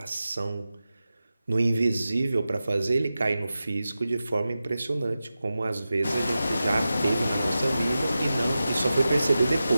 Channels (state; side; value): inverted; both; correlation -0.93